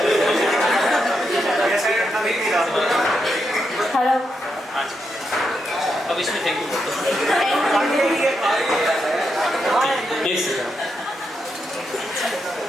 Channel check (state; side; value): normal; both; correlation 0.83